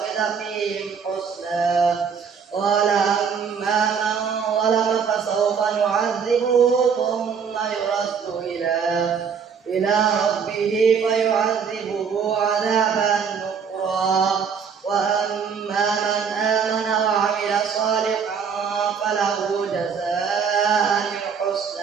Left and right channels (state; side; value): quieter; left; 6.5 dB